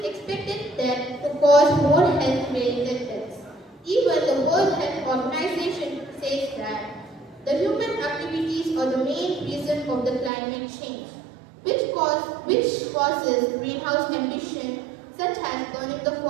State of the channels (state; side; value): drops out; left; at 10.3 s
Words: expected that to cause more health-related deaths. Even the World Health Organization says that the human activities are the main reason of the climate change, which causes greenhouse emission such as burning the